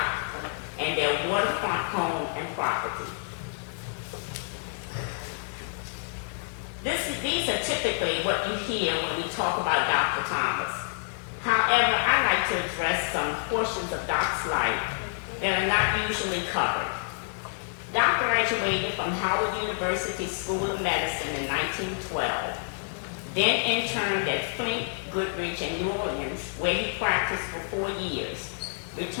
and their waterfront home and property. These are typically what you hear when we talk about Dr. Thomas. However, I like to address some portions of Doc's life that are not usually covered. Doc graduated from Howard University School of Medicine in 1912, then interned at Flint, Goodrich, and New Orleans, where he practiced for 4 years,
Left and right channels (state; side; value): silent; right; digital silence